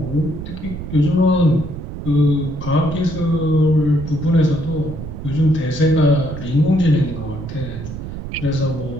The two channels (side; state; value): right; noise; rumble, 9 dB below the sound